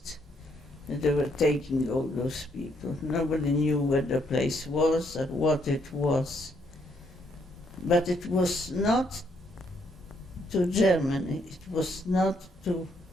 They were taking all those people. Nobody knew where the place was or what it was. But it was not to Germany, it was not to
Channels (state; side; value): normal; both; correlation 0.72